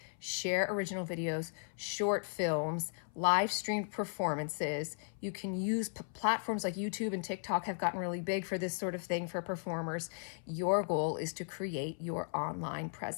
share original videos, short films, live streamed performances. You can use platforms like YouTube and TikTok have gotten really big for this sort of thing for performers. Your goal is to create your online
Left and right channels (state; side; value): silent; right; 54 dB below the other